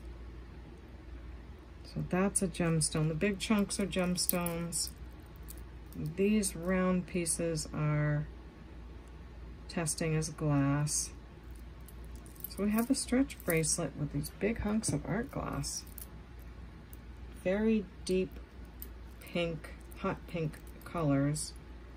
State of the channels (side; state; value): both; identical; correlation 1.00